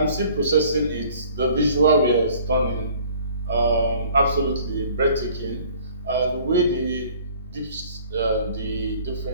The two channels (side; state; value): both; inverted; correlation -0.53